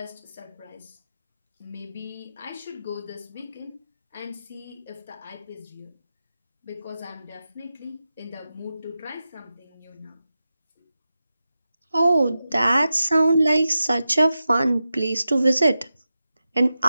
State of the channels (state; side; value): inverted; both; correlation -0.91